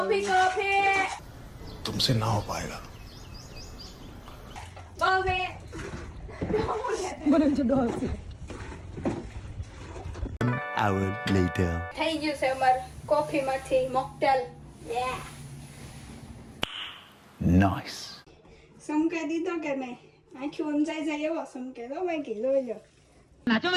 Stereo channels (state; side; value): identical; both; correlation 1.00